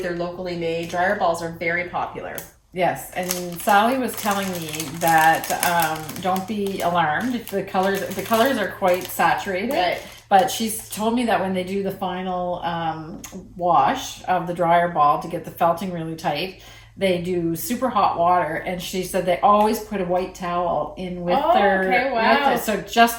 locally made. Dryer balls are very popular. Yes, and Sally was telling me that don't be alarmed if the colors are quite saturated. Right. But she's told me that when they do the final wash of the dryer ball to get the felting really tight, they do super hot water, and she said they always put a white towel in with so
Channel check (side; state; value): both; identical; correlation 1.00